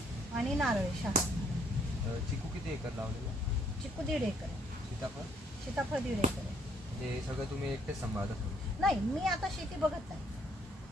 आणि नारळ शहा. चिकू किती एकर लावलेलं आहे? चिकू 1.5 एकर आहे. सीताफळ? सीताफळ 1.5 एकर आहे. म्हणजे सगळं तुम्ही एकटेच सांभाळता? नाही, मी आता शेती बघत नाही.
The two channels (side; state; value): both; normal; correlation 0.67